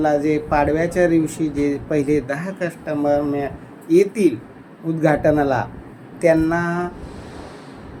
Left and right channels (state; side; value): identical; both; correlation 1.00